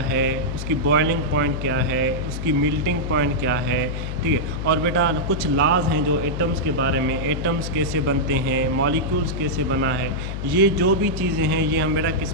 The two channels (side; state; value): left; noise; hum, 5 dB below the sound